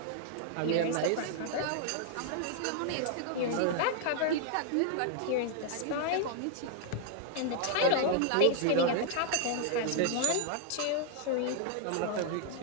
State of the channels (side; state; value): both; different; correlation 0.00